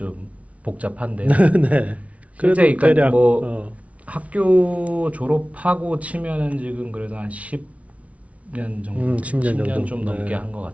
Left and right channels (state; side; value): late; left; 0.066 ms